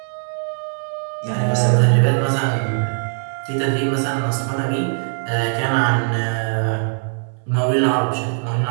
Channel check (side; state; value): left; silent; digital silence